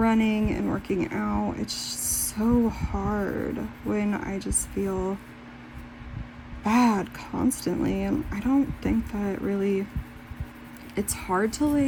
and working out. It's so hard when I just feel bad constantly, and I don't think that really, it's hard to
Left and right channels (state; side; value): identical; both; correlation 1.00